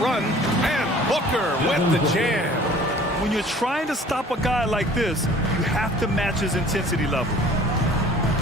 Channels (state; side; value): normal; both; correlation 0.50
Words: and Booker with the jam. When you're trying to stop a guy like this, you have to match his intensity level.